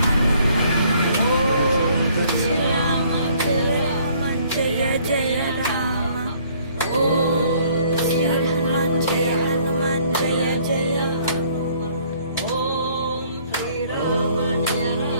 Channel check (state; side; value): inverted; both; correlation -0.61